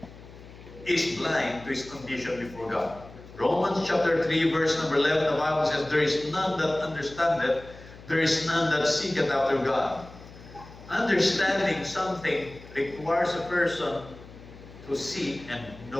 is blind to his condition before God. Romans chapter 3 verse number 11, the Bible says, there is none that understandeth, there is none that seeketh after God. Understanding something requires a person to see and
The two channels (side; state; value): left; noise; hum, 18 dB below the sound